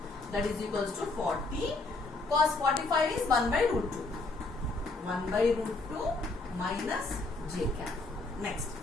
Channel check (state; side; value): quieter; right; 3.3 dB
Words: That is equals to 40. Cos 45 is 1 by root 2. 1 by root 2 minus J cap. Next,